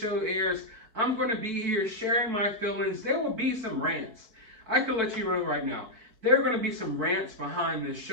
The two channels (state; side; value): late; left; 4.6 ms